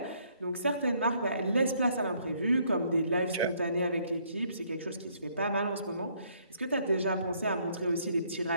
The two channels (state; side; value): inverted; both; correlation -0.67